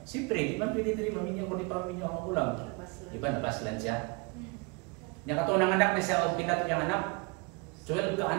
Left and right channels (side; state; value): left; quieter; 30.4 dB